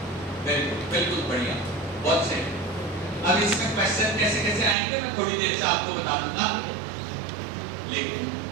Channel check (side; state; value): left; drops out; at 4.8 s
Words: very good, बिल्कुल बढ़िया, बहुत सही। अब इसमें क्वेश्चन कैसे कैसे आएंगे मैं थोड़ी देर से आपको बता दूंगा, लेकिन